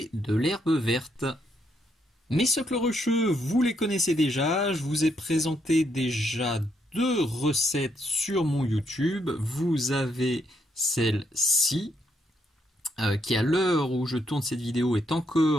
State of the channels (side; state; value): both; normal; correlation 0.76